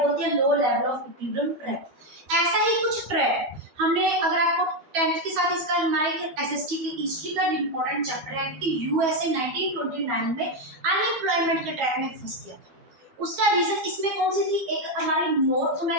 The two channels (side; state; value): left; late; 12 ms